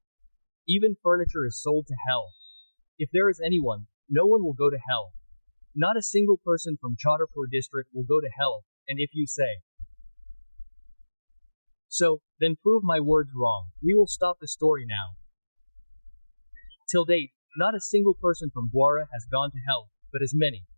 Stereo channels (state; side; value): inverted; both; correlation -1.00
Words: Even furniture is sold to hell. If there is anyone, no one will go to hell. Not a single person from Chhatarpur district will go to hell, and if you say so, then prove my words wrong. We will stop the story now. Till date, not a single person from Gwara has gone to hell, but as many